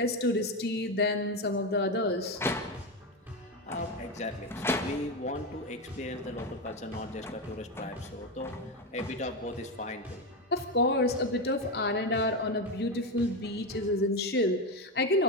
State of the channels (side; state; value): both; normal; correlation 0.13